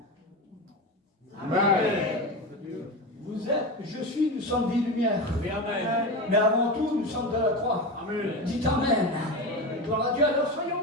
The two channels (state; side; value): normal; both; correlation 0.22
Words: Amen. Vous êtes, je suis, nous sommes des lumières. Amen. Mais avant tout, nous sommes de la croix. Amen. Dites Amen. Gloire à Dieu, alors